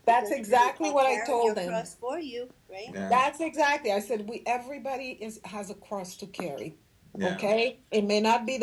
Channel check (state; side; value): identical; both; correlation 1.00